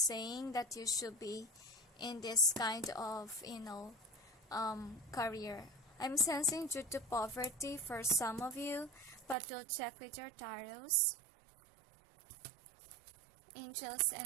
that you should be in this kind of, career. I'm sensing due to poverty for some of you, but we'll check with your tarots. Angels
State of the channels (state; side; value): drops out; left; at 9.3 s